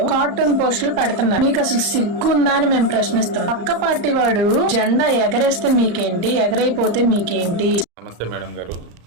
కార్టూన్ పోస్టులు పెడుతున్నారు. మీకు అసలు సిగ్గుందా అని మేము ప్రశ్నిస్తాం. పక్క పార్టీ వాడు జెండా ఎగరేస్తే మీకేంటి, ఎగరైపోతే మీకేంటి? నమస్తే మేడం గారు.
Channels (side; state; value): left; late; 34 ms